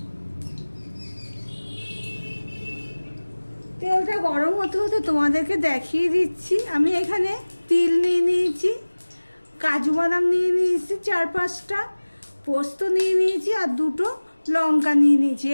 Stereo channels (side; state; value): both; inverted; correlation -1.00